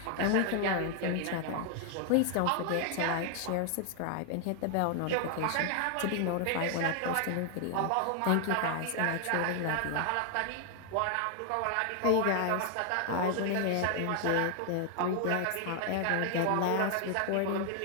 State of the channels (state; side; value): different; both; correlation 0.00